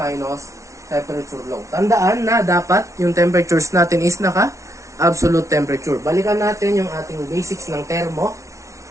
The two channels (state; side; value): late; left; 0.14 ms